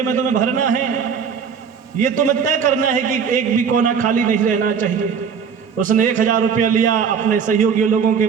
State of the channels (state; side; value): quieter; left; 6.7 dB